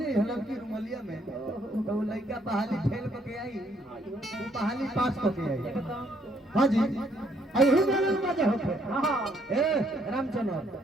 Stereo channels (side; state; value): both; normal; correlation 0.69